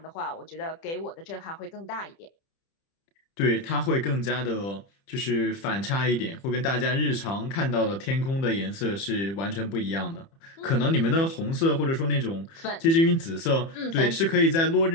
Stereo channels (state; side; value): late; right; 30 ms